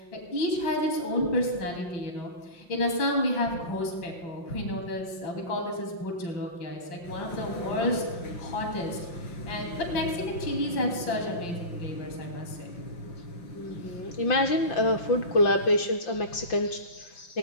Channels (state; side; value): late; right; 5.7 ms